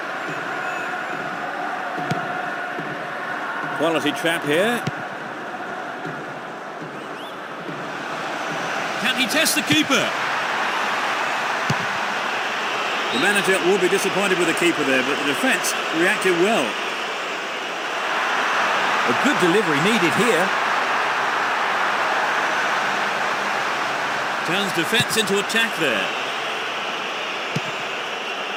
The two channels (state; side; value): identical; both; correlation 1.00